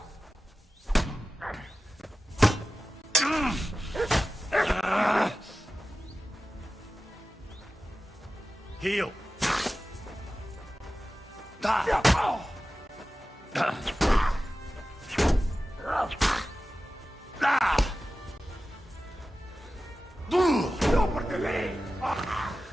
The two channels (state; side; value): normal; both; correlation 0.95